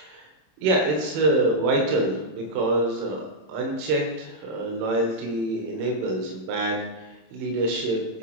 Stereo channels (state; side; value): late; left; 27 ms